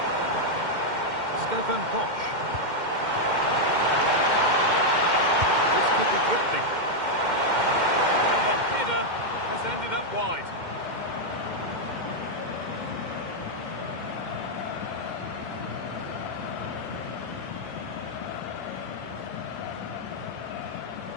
Stefan Posch. This could be threatening. And the header has ended up wide.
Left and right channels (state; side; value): late; left; 2.1 ms